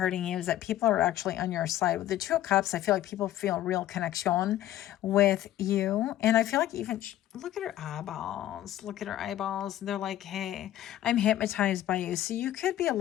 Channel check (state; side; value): quieter; right; 13.3 dB